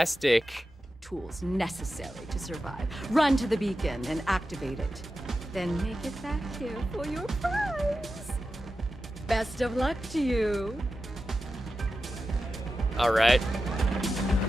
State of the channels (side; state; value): both; normal; correlation 0.92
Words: Tools necessary to survive. Run to the beacon and activate it. Then make it back here for your prize. Best of luck to you. Alright.